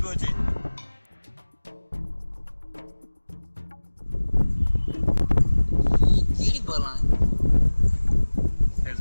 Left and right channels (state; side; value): inverted; both; correlation -1.00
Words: अचे कहिड़ी बला हे